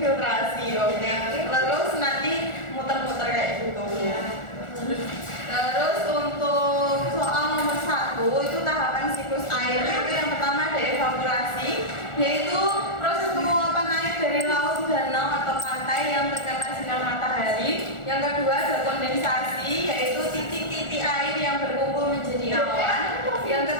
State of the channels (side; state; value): right; late; 1.4 ms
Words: oke. Terus nanti muter-muter kayak gitu. Terus untuk soal nomor 1 itu tahapan siklus air, itu yang pertama ada evaporasi, yaitu proses penguapan air dari laut, danau atau pantai yang terkena sinar matahari. Yang kedua ada kondensasi, yaitu titik-titik air yang berkumpul menjadi awan. Yang